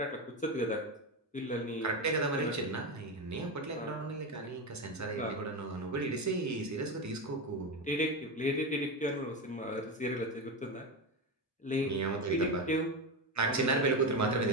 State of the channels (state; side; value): normal; both; correlation 0.15